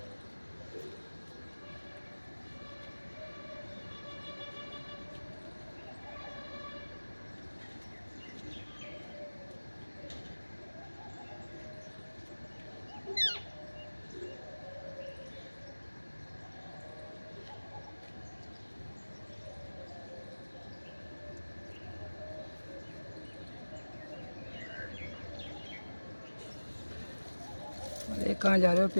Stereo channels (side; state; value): both; inverted; correlation -1.00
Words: अरे कहाँ जा रहे हो